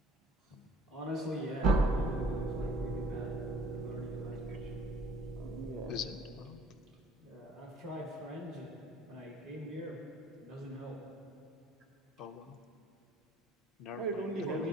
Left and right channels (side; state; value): both; normal; correlation 0.55